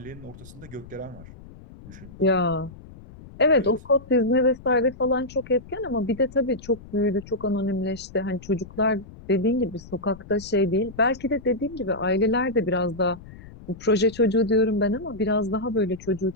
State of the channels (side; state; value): left; noise; rumble, 18 dB below the sound